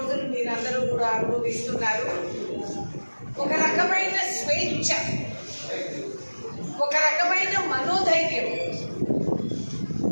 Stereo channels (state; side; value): inverted; both; correlation -1.00